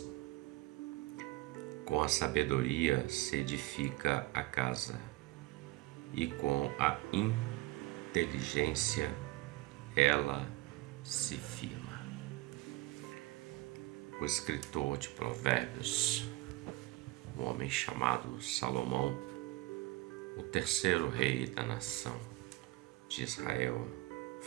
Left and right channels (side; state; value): left; quieter; 19.0 dB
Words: Com a sabedoria se edifica a casa, e com a inteligência ela se firma. O escritor de Provérbios, um homem chamado Salomão, o terceiro rei da nação de Israel,